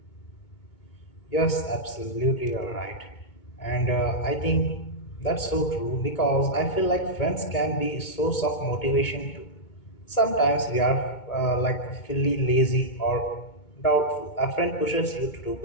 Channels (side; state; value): right; late; 2.2 ms